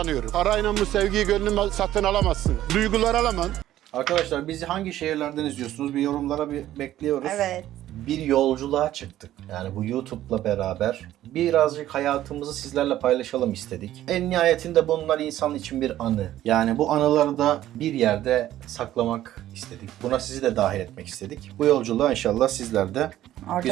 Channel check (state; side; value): quieter; left; 13.3 dB